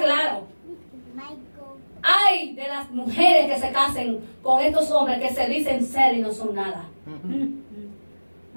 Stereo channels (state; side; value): inverted; both; correlation -1.00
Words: Ay de las mujeres que se casen con estos hombres que se dicen ser y no son nada.